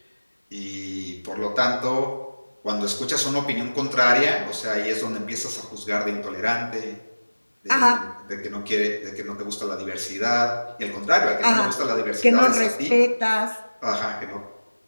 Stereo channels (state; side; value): inverted; both; correlation -1.00